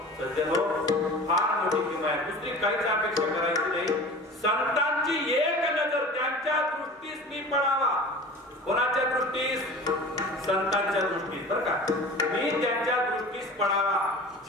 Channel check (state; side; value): normal; both; correlation 0.39